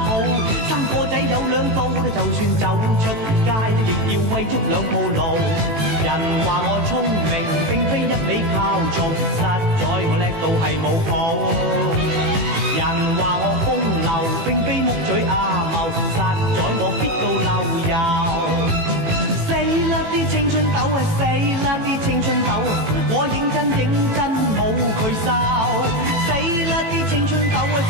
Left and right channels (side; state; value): left; late; 18 ms